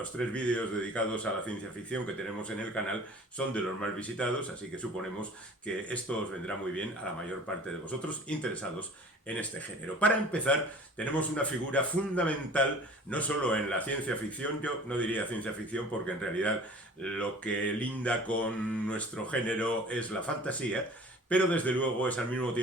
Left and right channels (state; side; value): normal; both; correlation 0.45